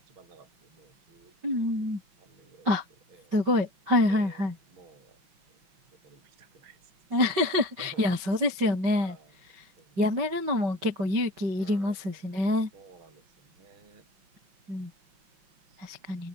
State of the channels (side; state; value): left; late; 5.3 ms